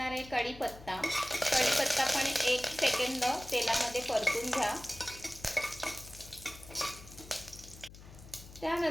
आहे कढीपत्ता पण 1 सेकंद तेलामध्ये परतून घ्या.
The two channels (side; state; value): left; noise; hum, 18 dB below the sound